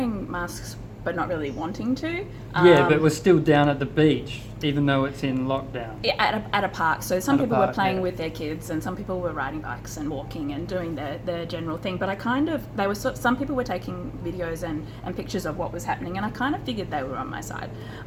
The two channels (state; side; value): identical; both; correlation 1.00